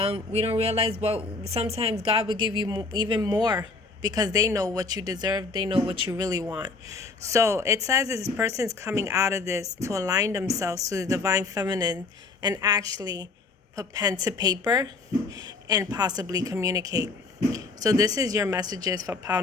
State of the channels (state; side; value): quieter; right; 4.0 dB